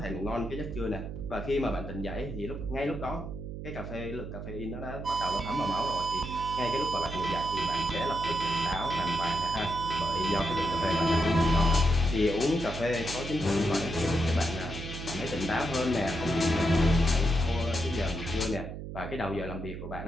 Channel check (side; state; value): right; noise; hum, 8 dB below the sound